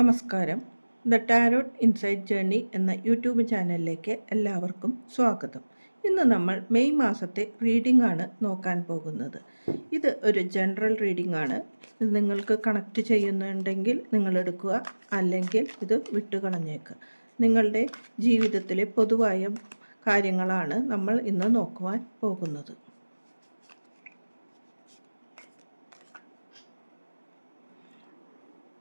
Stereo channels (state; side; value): inverted; both; correlation -1.00